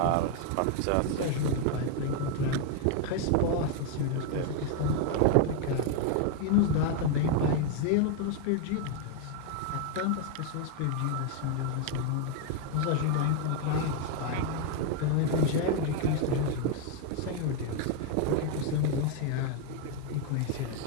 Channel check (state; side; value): different; both; correlation 0.01